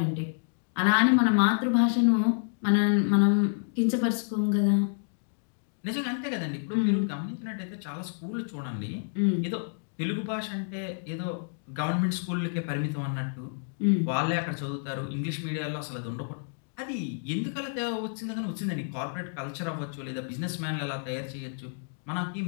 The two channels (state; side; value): silent; right; digital silence